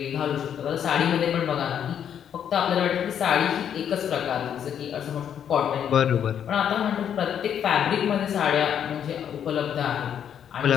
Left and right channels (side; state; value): right; quieter; 8.9 dB